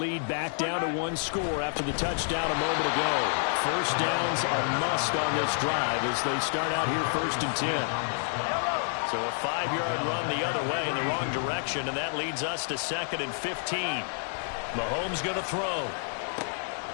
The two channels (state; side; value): silent; right; digital silence